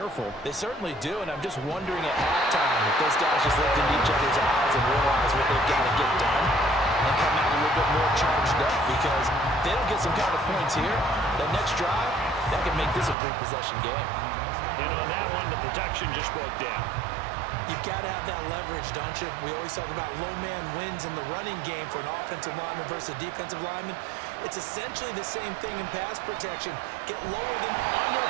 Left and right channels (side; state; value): left; drops out; at 13.2 s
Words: They certainly do, and I'm just wondering at halftime if those guys just looked into each other's eyes and realize what they've got to get done and come out a little bit more charged up, because if they don't get some kind of points here, that next drive, that can make this a three-possession game. And on that one, the protection just broke down. You've got to have that leverage, don't you? We always talk about low man wins in the running game for an offensive lineman versus a defensive lineman. It's essentially the same thing in pass protection. Get lower than... Under